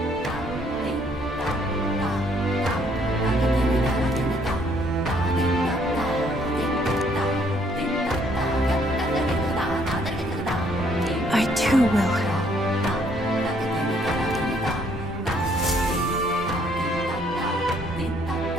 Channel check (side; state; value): both; normal; correlation 0.66